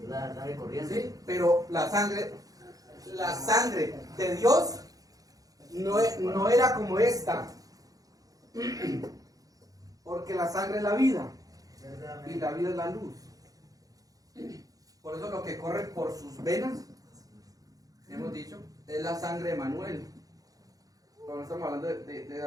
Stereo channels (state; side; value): late; left; 0.17 ms